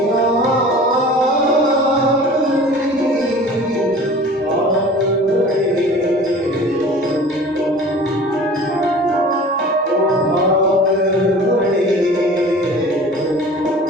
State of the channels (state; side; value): normal; both; correlation 0.42